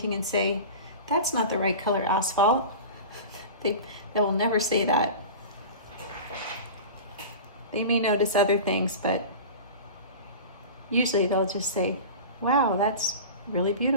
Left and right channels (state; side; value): inverted; both; correlation -0.33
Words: and say, that's not the right color asphalt. They will never say that. They may notice other things, but usually they'll just say, wow, that's really